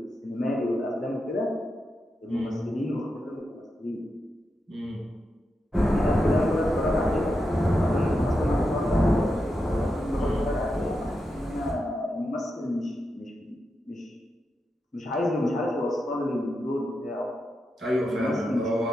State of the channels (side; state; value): both; normal; correlation 0.87